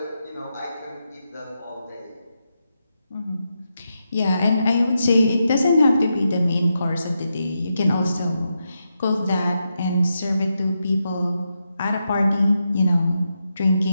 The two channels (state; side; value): inverted; both; correlation -0.85